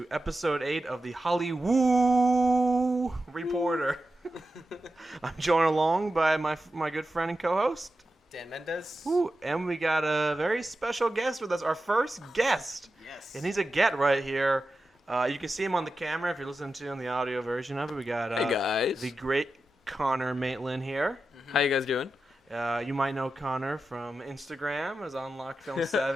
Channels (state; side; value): normal; both; correlation 0.91